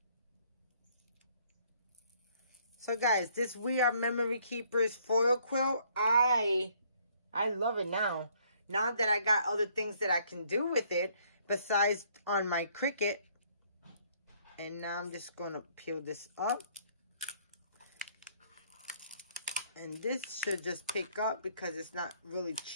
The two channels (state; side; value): inverted; both; correlation -0.64